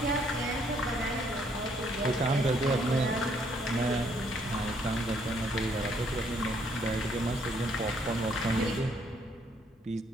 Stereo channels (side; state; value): both; normal; correlation 0.68